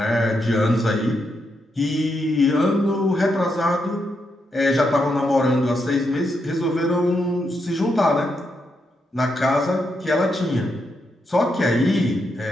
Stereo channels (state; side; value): normal; both; correlation 0.82